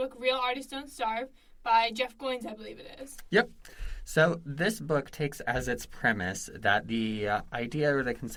Real Artists Don't Starve by Jeff Goins, I believe it is. Yep. So this book takes as its premise that the idea or the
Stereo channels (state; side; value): identical; both; correlation 1.00